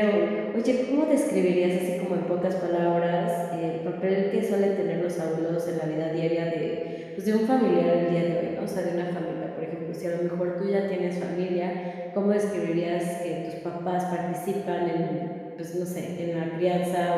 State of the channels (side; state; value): both; identical; correlation 1.00